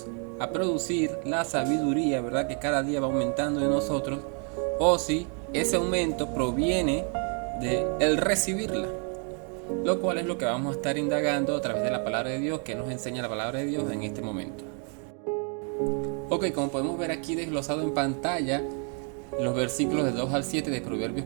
a producir la sabiduría, ¿verdad? Que cada día va aumentando en nosotros, o si ese aumento proviene de el recibirla, lo cual es lo que vamos a estar indagando a través de la palabra de Dios, que nos enseña la palabra de Dios en este momento. Ok, como podemos ver aquí desglosado en pantalla, los versículos de 2 al 7 de Proverbios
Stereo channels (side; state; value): left; quieter; 39.2 dB